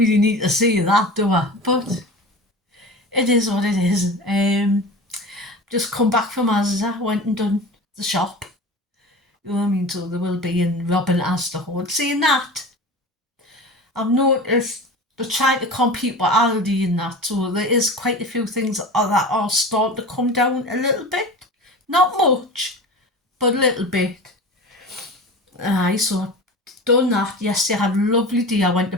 need to say that, do I? But it is what it is. Just come back from asda, went and done the shop. You know what I mean? So there will be in Robin Asda Hoard. Saying that, I've noticed they're trying to compete with Aldi and that, so there is quite a few things that are starting to come down a little bit. Not much, but a little bit. Aye, so I've done that. Yesterday I had a lovely day. I went to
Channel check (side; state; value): both; normal; correlation 0.33